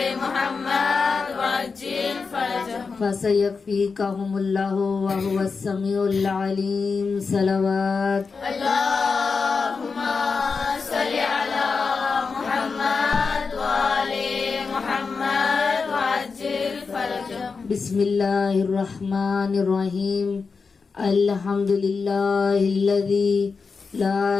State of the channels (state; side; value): quieter; right; 4.9 dB